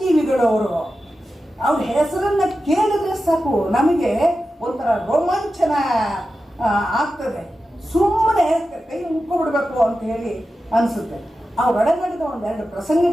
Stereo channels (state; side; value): normal; both; correlation 0.92